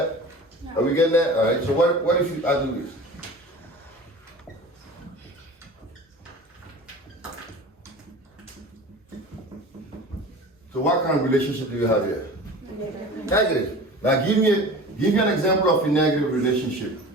No. Are we getting that? All right. So what if I do this? So what kind of relationship do you have here? Negative. Negative. Now give me an example of a negative relationship.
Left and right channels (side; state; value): both; normal; correlation 0.38